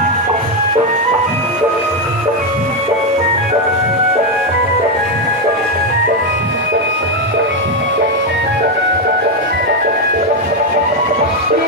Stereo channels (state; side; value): normal; both; correlation 0.06